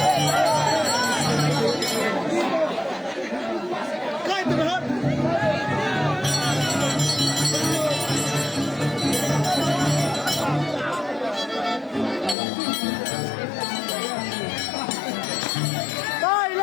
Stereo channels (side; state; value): right; drops out; at 12.4 s